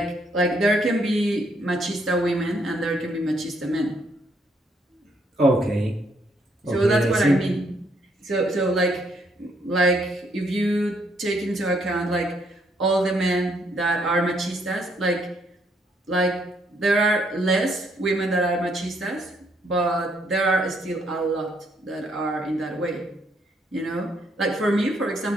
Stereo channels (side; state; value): both; normal; correlation 0.71